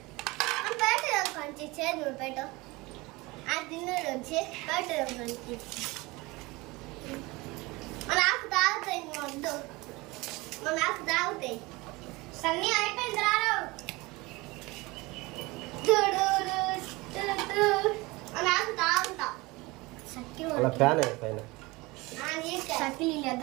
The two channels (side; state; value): left; quieter; 22.9 dB